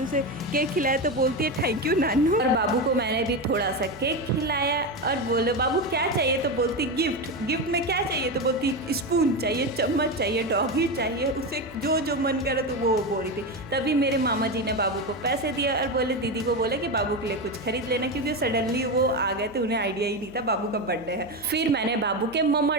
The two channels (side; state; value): right; noise; hum, 22 dB below the sound